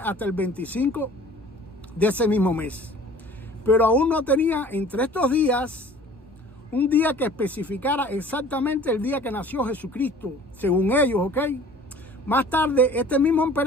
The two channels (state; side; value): normal; both; correlation 0.48